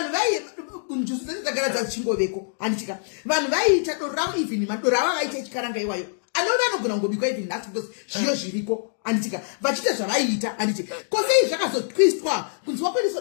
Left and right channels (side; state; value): right; silent; digital silence